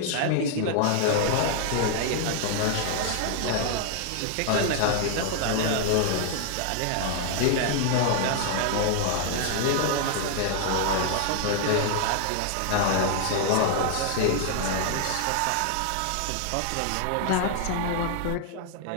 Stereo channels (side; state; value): both; different; correlation 0.00